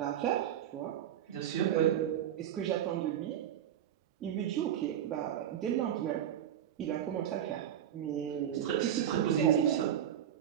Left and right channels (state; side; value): quieter; left; 10.3 dB